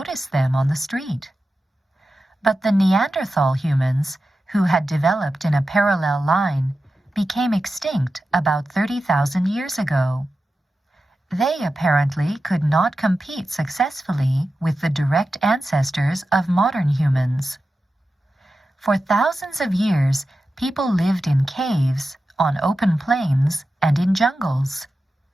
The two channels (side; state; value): both; normal; correlation 0.92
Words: them on the street. But the Neanderthal humans, who had developed in a parallel line, became extinct about 30,000 years ago. They apparently could not compete successfully with the direct ancestors of modern humans. For thousands of years, people lived in caves, on open plains, and in jungles.